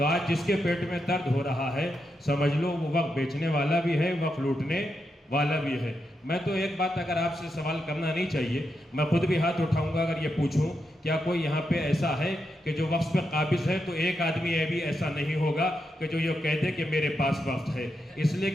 آج جس کے پیٹ میں درد ہو رہا ہے سمجھ لو وہ وقت بیچنے والا بھی ہے، وقت لوٹنے والا بھی ہے۔ میں تو ایک بات اگر آپ سے سوال کرنا نہیں چاہیے، میں خود بھی ہاتھ اٹھاؤں گا اگر یہ پوچھوں کیا کوئی یہاں پہ ایسا ہے کہ جو وقف پہ قابض ہے، تو ایک آدمی یہ بھی ایسا نہیں ہوگا کہ جو یہ کہہ دے کہ میرے پاس وقف ہے۔ اس لیے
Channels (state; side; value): normal; both; correlation 0.85